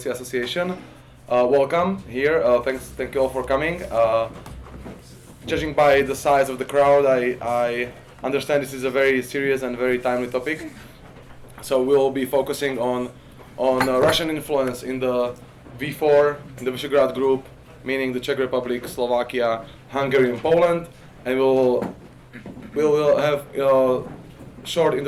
Association. Welcome here. Thank you all for coming. Judging by the size of the crowd, I understand this is a very serious and very timely topic. So we'll be focusing on Russian influence in the V4, in the Visegrad Group, meaning the Czech Republic, Slovakia, Hungary, and Poland, and we'll have short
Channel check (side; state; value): both; identical; correlation 1.00